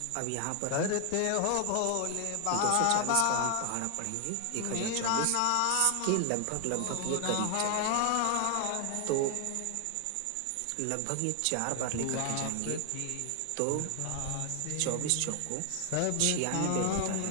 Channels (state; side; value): different; both; correlation 0.00